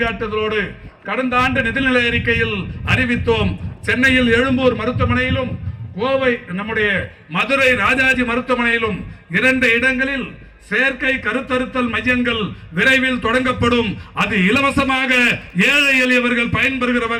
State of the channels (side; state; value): both; identical; correlation 1.00